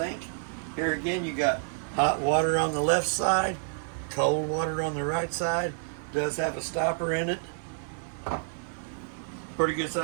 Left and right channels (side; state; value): left; silent; 59 dB below the other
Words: Here again, you got hot water on the left side, cold water on the right side. Does have a stopper in it Pretty good